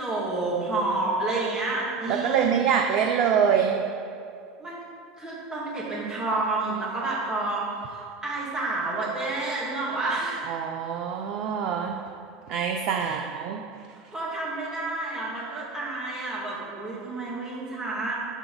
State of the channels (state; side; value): quieter; left; 4.5 dB